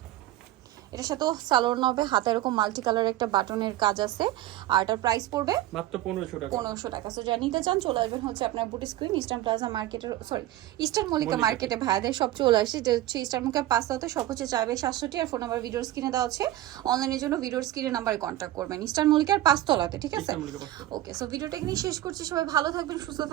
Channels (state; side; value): quieter; left; 14.8 dB